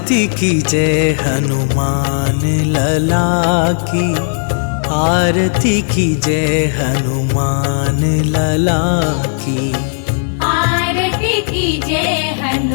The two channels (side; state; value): right; silent; digital silence